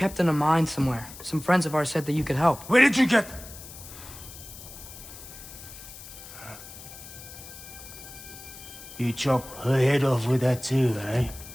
in a mine somewhere. Some friends of ours said that you could help. Where did you get... You chop her head off with that too, eh?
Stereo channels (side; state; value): left; noise; hiss, 15 dB below the sound